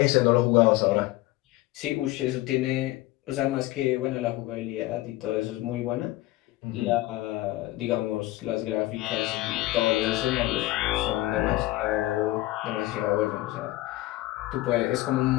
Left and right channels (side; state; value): right; quieter; 17.8 dB